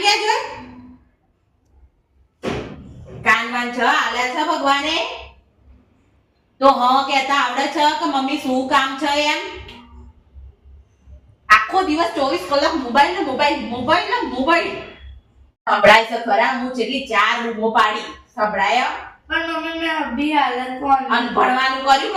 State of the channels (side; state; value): both; identical; correlation 1.00